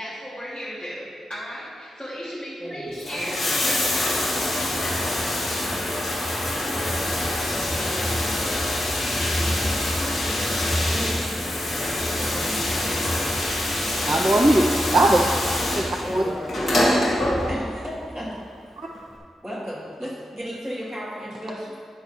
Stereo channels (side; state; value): both; normal; correlation 0.87